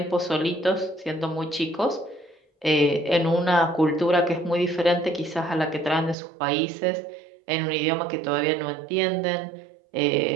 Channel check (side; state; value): left; drops out; at 6.2 s